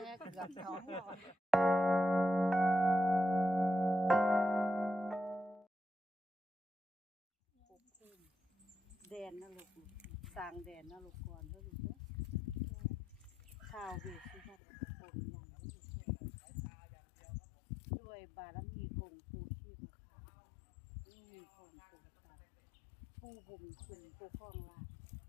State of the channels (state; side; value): drops out; right; at 14.6 s